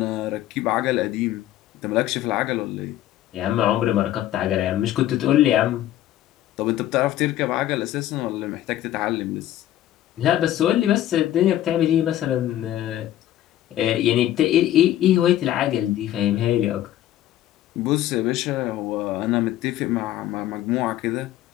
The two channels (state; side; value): quieter; right; 13.0 dB